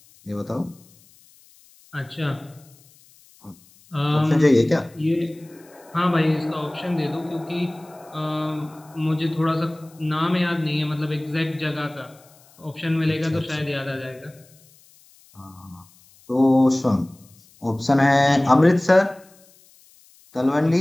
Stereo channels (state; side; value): noise; left; hiss, 28 dB below the sound